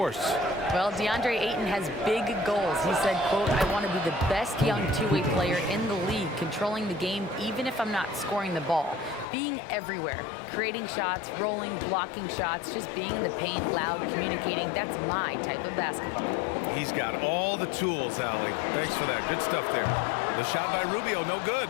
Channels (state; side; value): drops out; right; at 9.2 s